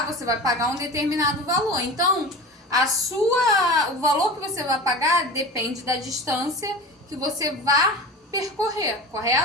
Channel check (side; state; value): both; normal; correlation 0.33